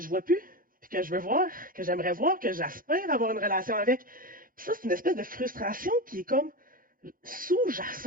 vois plus, puis que je veux voir, que j'aimerais voir, que j'espère avoir une relation avec. Puis ça, c'est une espèce de frustration qui est comme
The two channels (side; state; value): left; late; 0.41 ms